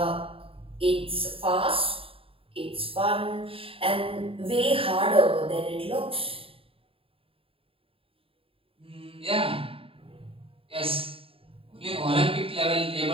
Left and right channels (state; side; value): late; left; 0.27 ms